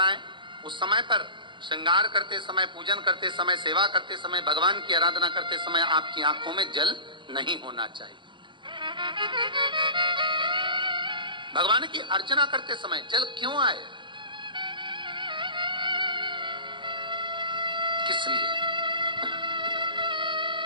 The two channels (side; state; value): left; late; 0.23 ms